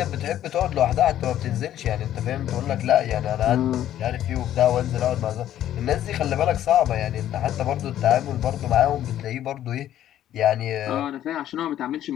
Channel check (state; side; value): quieter; right; 11.9 dB